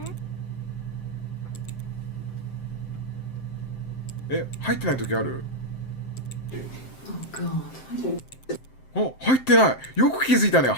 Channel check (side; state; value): right; late; 7.7 ms